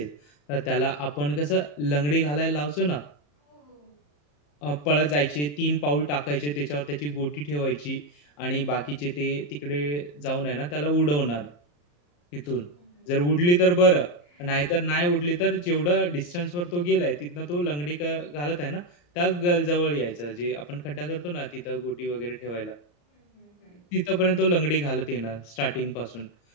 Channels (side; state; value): right; late; 34 ms